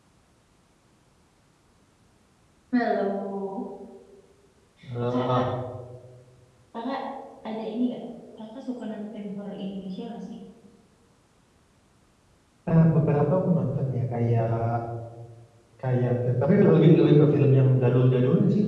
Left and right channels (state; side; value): identical; both; correlation 1.00